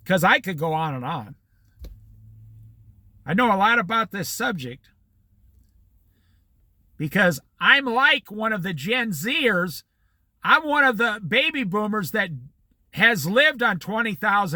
because I could go on and on. I know a lot about this subject because I'm like one of the Gen Zers. I'm one of the baby boomers that has lived on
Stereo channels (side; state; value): both; identical; correlation 1.00